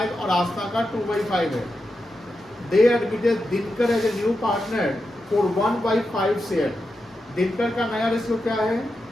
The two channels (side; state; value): both; normal; correlation 0.88